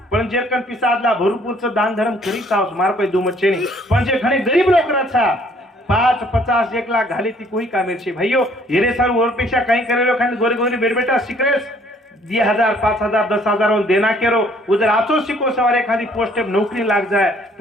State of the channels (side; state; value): both; normal; correlation 0.61